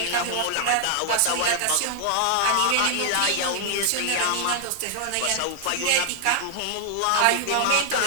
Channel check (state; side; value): different; both; correlation 0.00